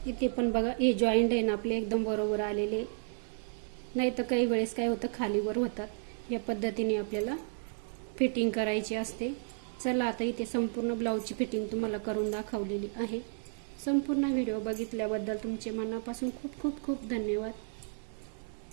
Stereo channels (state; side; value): silent; left; 56 dB below the other